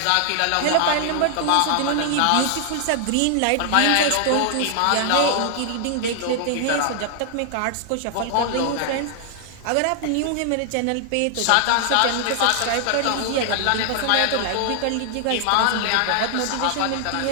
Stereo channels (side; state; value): both; different; correlation 0.00